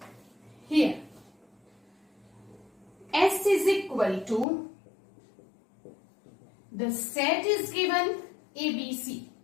here S is equal to, the set is given ABC.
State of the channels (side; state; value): right; drops out; at 4.5 s